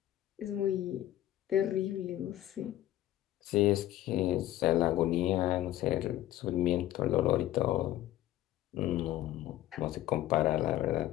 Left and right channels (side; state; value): right; quieter; 13.9 dB